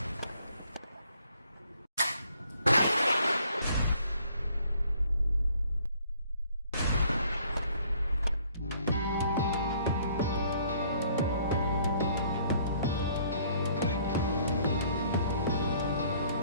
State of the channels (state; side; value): inverted; both; correlation -0.62